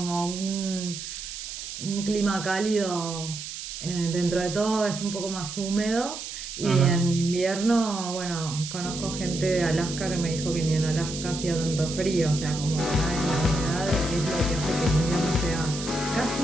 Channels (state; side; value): noise; right; hiss, 8 dB below the sound